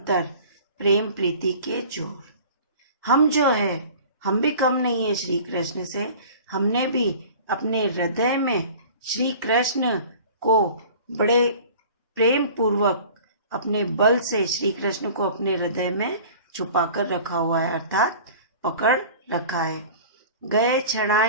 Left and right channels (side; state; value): both; inverted; correlation -0.43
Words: प्रेम प्रीति के जोर। हम जो है हम भी कम नहीं है श्री कृष्ण से। हमने भी अपने हृदय में श्री कृष्ण को बड़े प्रेम पूर्वक अपने बल से श्री कृष्ण को अपने हृदय में छुपा कर रखा हुआ है, अर्थात पकड़ रखा है। गए